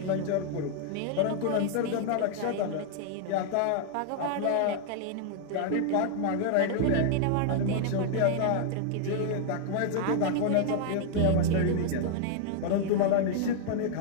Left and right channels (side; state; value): both; different; correlation 0.00